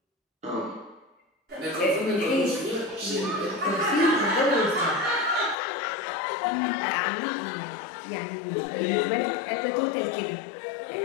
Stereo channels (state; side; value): drops out; right; at 5.6 s